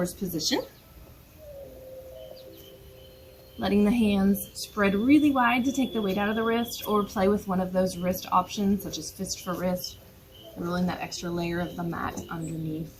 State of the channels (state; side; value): identical; both; correlation 1.00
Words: position. Letting the hands spread really wide to take the weight out of the wrist, or play with one of those wrist options, such as fist for wrist, rolling that extra layer of the mat underneath.